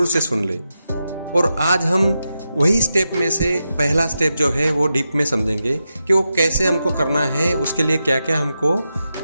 से सुन ले। और आज हम वही स्टेप में से पहला स्टेप जो है वो डीप में समझेंगे कि वो कैसे हमको करना है, उसके लिए क्या क्या हमको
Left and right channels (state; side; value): inverted; both; correlation -0.88